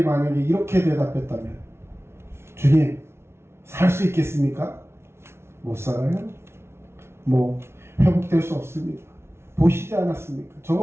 만약에 이렇게 대답했다면, 주님, 살 수 있겠습니까? 못 살아요. 회복될 수 없습니다. 보시지 않았습니까?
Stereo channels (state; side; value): late; left; 0.12 ms